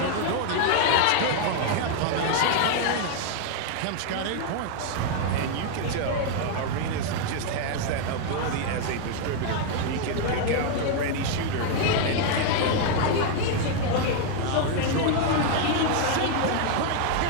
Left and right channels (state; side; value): different; both; correlation 0.00